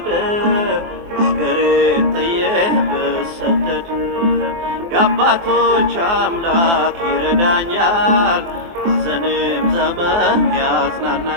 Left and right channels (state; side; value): late; left; 24 ms